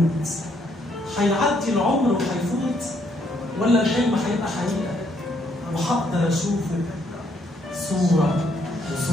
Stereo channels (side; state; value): both; normal; correlation 0.71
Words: هيعدي العمر وهيفوت ولا الحلم هيبقى حقيقة وهقدر أشوفه صورة